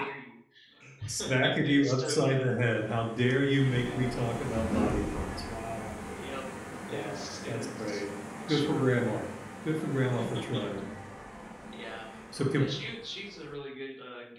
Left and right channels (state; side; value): identical; both; correlation 1.00